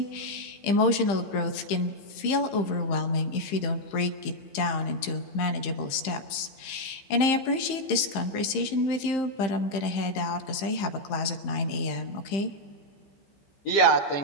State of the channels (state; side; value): late; right; 15 ms